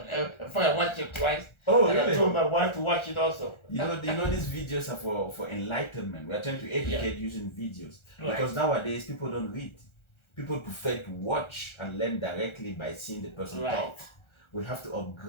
watched it twice. Oh, and really? I told my wife to watch it also. You know these videos are for enlightenment. We are trying to educate using videos. Right. Because nowadays people don't read. People prefer to watch and learn directly by seeing the person talk. We have to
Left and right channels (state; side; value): late; right; 1.4 ms